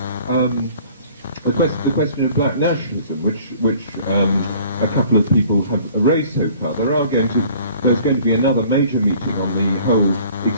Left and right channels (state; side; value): inverted; both; correlation -0.52